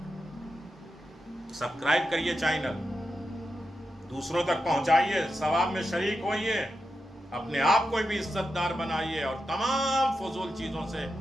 سبسکرائب کریے چینل، دوسروں تک پہنچائیے، ثواب میں شریک ہوئیے، اپنے آپ کو بھی عزت دار بنائیے اور تمام فضول چیزوں سے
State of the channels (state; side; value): normal; both; correlation 0.88